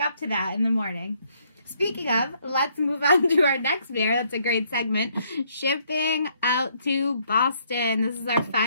to that in the morning? Speaking of, let's move on to our next beer. That's a great segment. Shipping out to Boston. This is our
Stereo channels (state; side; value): inverted; both; correlation -0.69